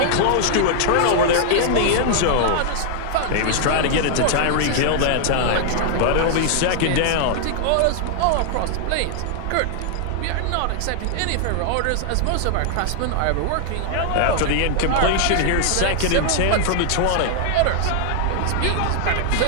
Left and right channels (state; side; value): different; both; correlation 0.00